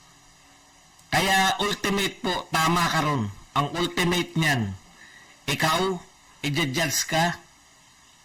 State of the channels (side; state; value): both; identical; correlation 1.00